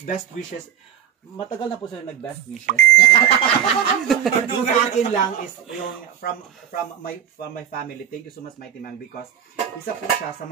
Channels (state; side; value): quieter; left; 9.6 dB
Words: wishes. Matagal na po sila nag-best wishes. Yung sa akin lang is yung from my family. Thank you so much, Mighty Man, because isa po siya sa